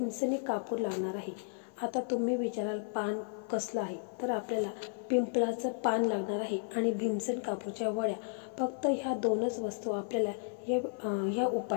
कापूर लागणार आहे. आता तुम्ही विचाराल पान कसलं आहे, तर आपल्याला पिंपळाचं पान लागणार आहे आणि भीमसेन कापूरच्या वड्या. फक्त ह्या दोनच वस्तू आपल्याला या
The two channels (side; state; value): right; silent; 55 dB below the other